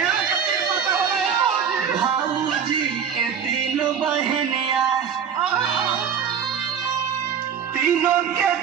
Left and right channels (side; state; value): left; quieter; 7.6 dB